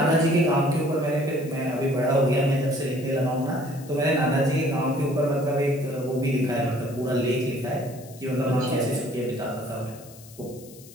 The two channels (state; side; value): noise; left; hiss, 21 dB below the sound